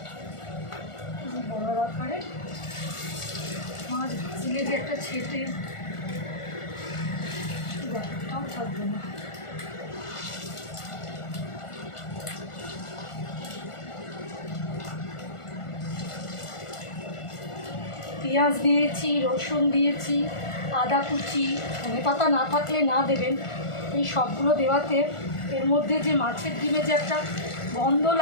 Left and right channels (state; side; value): late; right; 1.4 ms